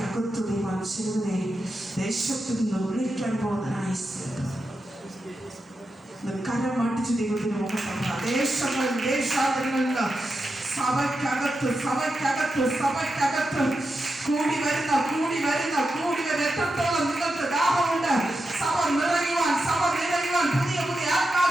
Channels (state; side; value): normal; both; correlation 0.88